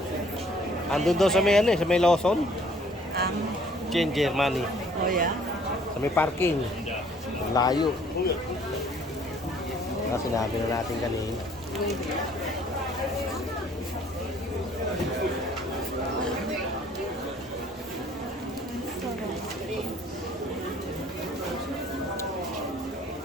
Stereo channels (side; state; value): both; normal; correlation 0.58